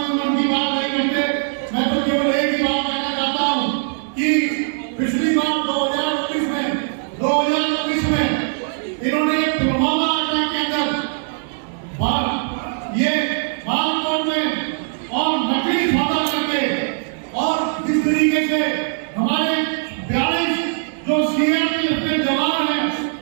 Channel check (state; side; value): silent; left; digital silence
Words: की बात नहीं करते। मैं तो केवल एक ही बात कहना चाहता हूँ कि पिछली बार 2019 में इन्होंने पुलवामा अटैक के अंदर ये बालकोट में और नकली सौदा करके और जिस तरीके से हमारे 42 जो सीआरपीएफ के जवान हैं